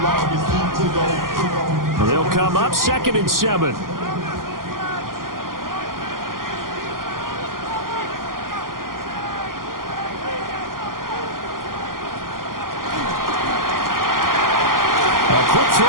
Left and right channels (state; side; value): late; left; 0.91 ms